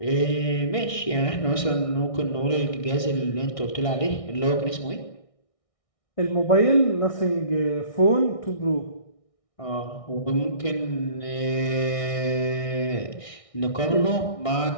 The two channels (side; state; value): right; late; 1.6 ms